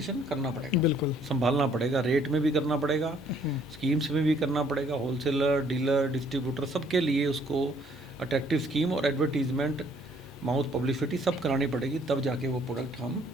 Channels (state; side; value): normal; both; correlation 0.62